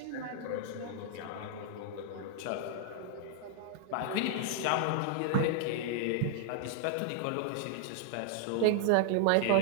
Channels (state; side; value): different; both; correlation 0.00